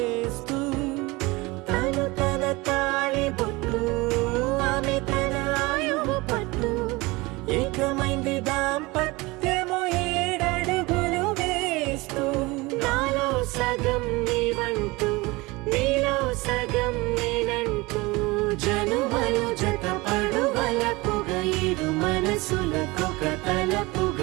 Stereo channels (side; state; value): left; quieter; 23.0 dB